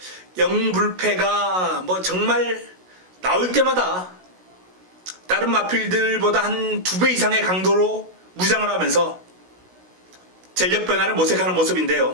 영불패가 정말 나올 때마다 다른 마필들보다 한 2배 이상의 강도로 무장을 하면서 전력 변화를 모색하는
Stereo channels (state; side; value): late; left; 16 ms